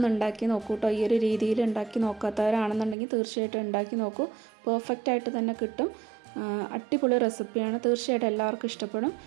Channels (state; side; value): drops out; left; at 3.0 s